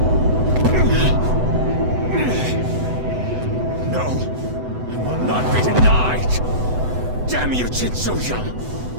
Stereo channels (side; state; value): left; late; 8.0 ms